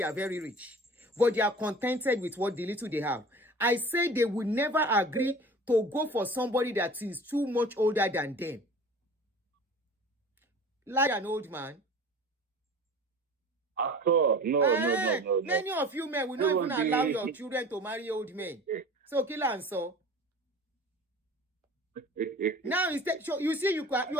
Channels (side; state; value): both; normal; correlation 0.40